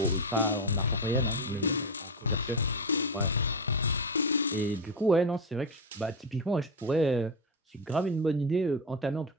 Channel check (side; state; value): both; normal; correlation 0.13